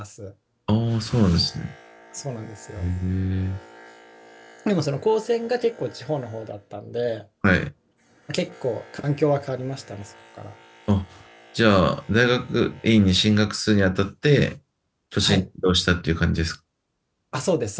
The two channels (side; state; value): both; identical; correlation 1.00